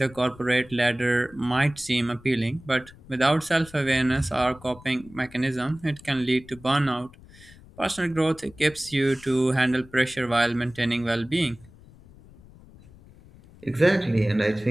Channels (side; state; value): left; noise; rumble, 22 dB below the sound